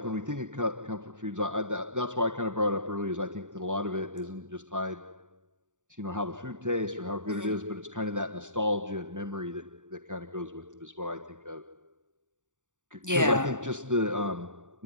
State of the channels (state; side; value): late; left; 0.86 ms